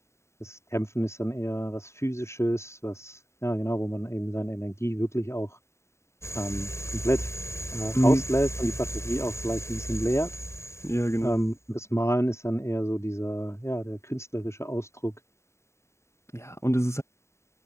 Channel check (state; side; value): late; right; 0.13 ms